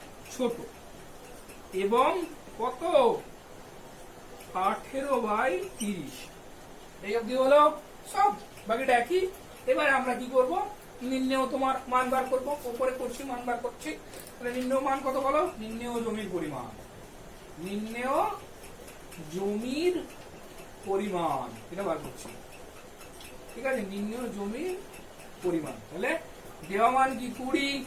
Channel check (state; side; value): identical; both; correlation 1.00